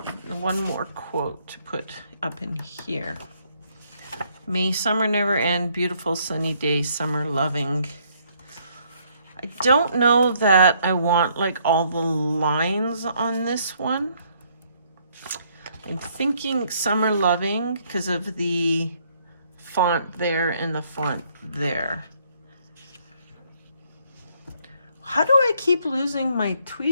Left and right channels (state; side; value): inverted; both; correlation -0.68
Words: one more quote to put up in here. May summer never end, beautiful sunny day, summer loving. I don't know that I want like all the lines on this one. I'm thinking summer loving because of the font there and the font there. How do I keep losing my